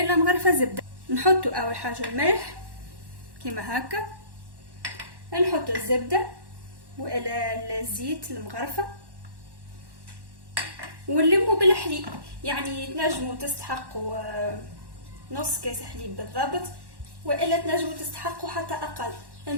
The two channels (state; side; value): late; left; 1.1 ms